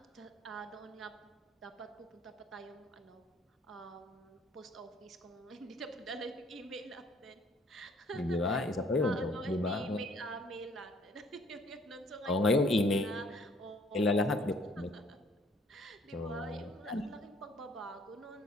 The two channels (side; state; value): both; normal; correlation 0.60